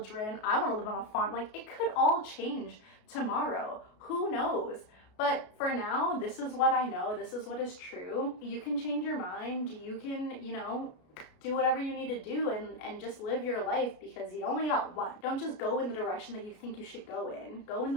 I want to live on a farm. Like, it could all change tomorrow. Who knows? But for now, this is what I know. This is what is true. You can change your mind. You can, do whatever you need to do and just live your life, because you only got one. Don't just go in the direction that you think you should go in. Go in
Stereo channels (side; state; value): right; late; 33 ms